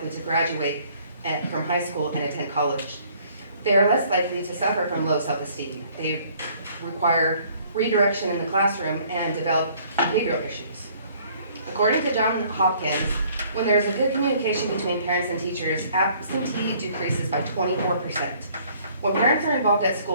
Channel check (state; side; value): inverted; both; correlation -0.59